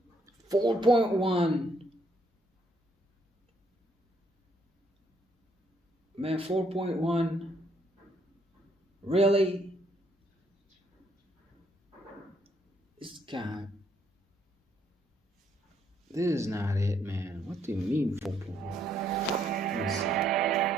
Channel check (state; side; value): normal; both; correlation 0.70